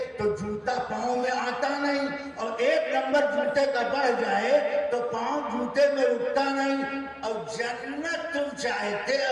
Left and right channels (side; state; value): both; identical; correlation 1.00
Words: تو جوتا پاؤں میں آتا نہیں، اور 1 نمبر جوتے کا بڑھ جائے تو پاؤں جوتے میں رکتا نہیں۔ اور جنت تم چاہتے